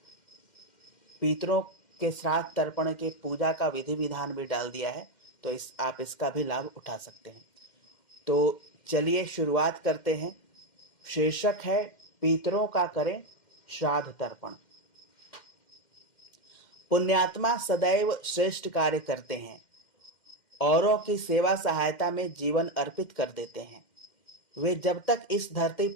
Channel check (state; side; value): late; right; 2.1 ms